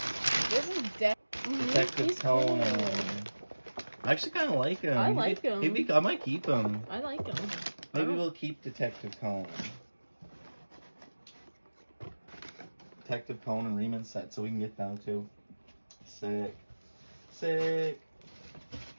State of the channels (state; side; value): inverted; both; correlation -1.00